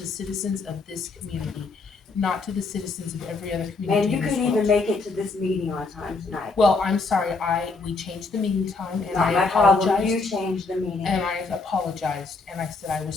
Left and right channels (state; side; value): quieter; right; 4.0 dB